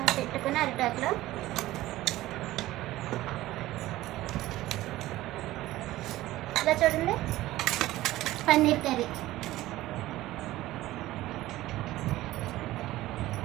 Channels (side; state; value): left; quieter; 16.4 dB